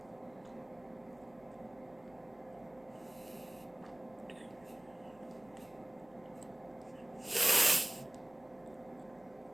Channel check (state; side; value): noise; right; hum, 28 dB below the sound